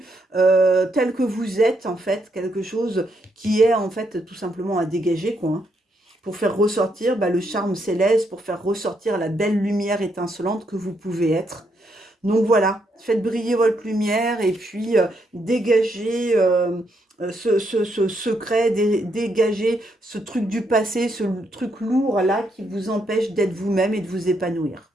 tel que vous êtes, en fait, quelque chose qui est, en fait, tout simplement à dégager, quoi, hein, pour faire ressortir le charme céleste, pour faire ressortir la belle lumière étincelante que vous pouvez être. Donc voilà, faites briller votre lumière et puis dégagez ce secret, dégagez ce truc du passé, ce truc lourd là qui vous empêche d'être vous-même et de vous épanouir.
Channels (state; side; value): normal; both; correlation 0.77